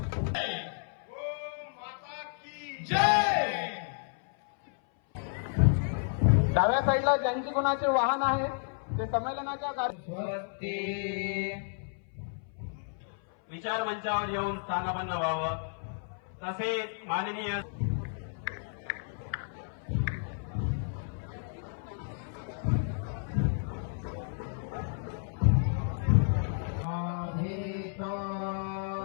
डाव्या साईडला ज्यांची कोणाचे वाहन आहे ते संमेलनाच्या विचार मंचावर येऊन स्थानापन्न व्हावं। तसेच माननीय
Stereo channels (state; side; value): silent; right; 57 dB below the other